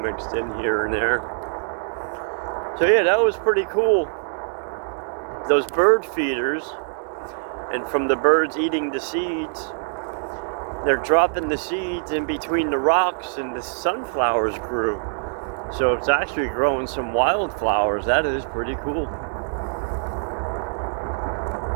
mixed in here and there. So yeah, that was pretty cool. Those bird feeders, and from the birds eating the seeds, they're dropping the seeds in between the rocks and the sunflowers grew. So it's actually growing some wildflowers. That is pretty cool.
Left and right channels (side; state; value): left; silent; 63 dB below the other